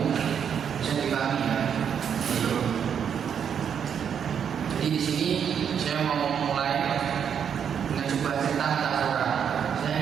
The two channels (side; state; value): left; quieter; 7.9 dB